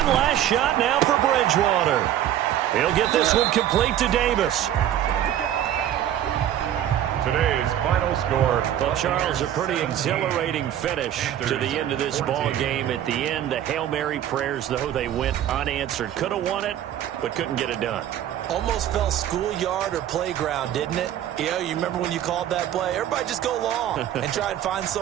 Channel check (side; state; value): left; quieter; 11.3 dB